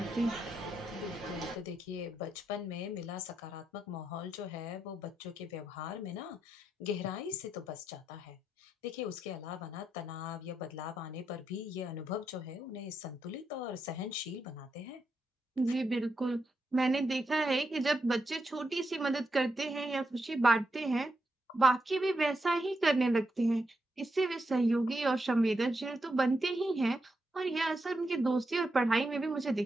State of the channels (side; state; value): both; normal; correlation 0.84